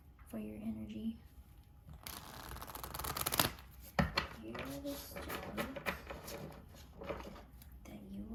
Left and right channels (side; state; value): both; identical; correlation 1.00